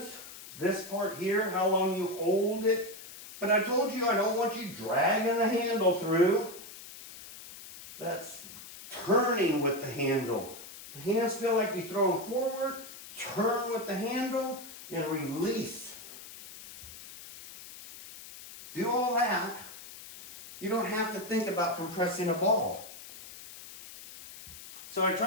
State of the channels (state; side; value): noise; left; hiss, 15 dB below the sound